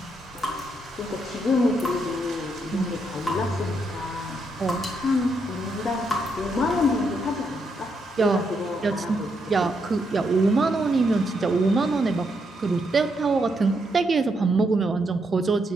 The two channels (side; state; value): both; normal; correlation 0.79